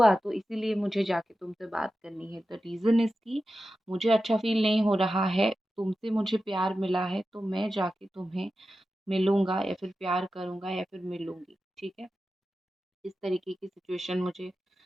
तो इसीलिए मुझे जाके तुमसे बात करनी है। द रीज़न इज़ कि मुझे अच्छा फ़ील नहीं हो रहा है, तुमसे मुझे प्यार मिला है तो मैं जाके तुम्हें मिलूँगा या फिर प्यार करूँगा या फिर मिलूँगी, ठीक है? इस तरीके की सिचुएशन मुझे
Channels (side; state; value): both; normal; correlation 0.92